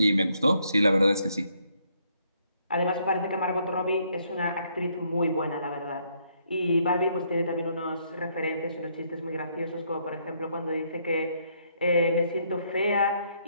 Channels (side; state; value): both; inverted; correlation -0.71